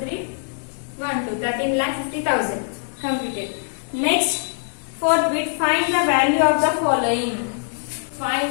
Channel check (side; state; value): right; silent; digital silence